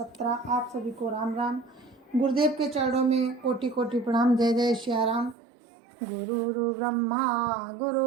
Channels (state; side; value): drops out; left; at 5.4 s